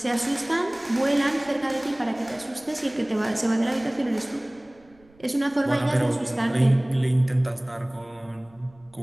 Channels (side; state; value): right; noise; rumble, 29 dB below the sound